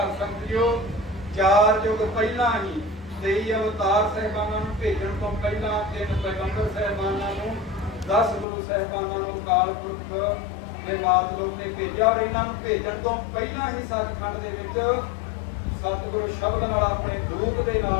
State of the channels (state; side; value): drops out; right; at 8.5 s